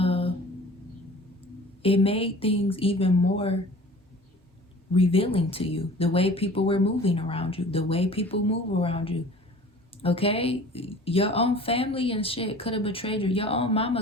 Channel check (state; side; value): normal; both; correlation 0.44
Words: it made things even more revealing to you. The way people were moving around you. The way people move around you. Okay? Your own family and shit could have betrayed you. Your own